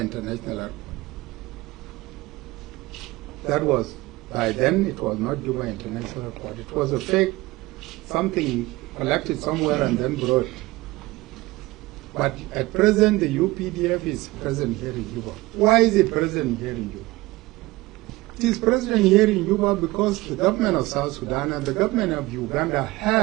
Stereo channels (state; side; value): quieter; left; 20.1 dB